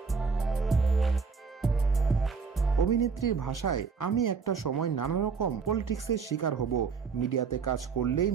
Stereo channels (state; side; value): quieter; left; 5.4 dB